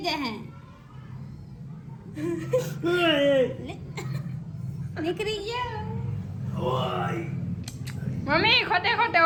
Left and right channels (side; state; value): both; identical; correlation 1.00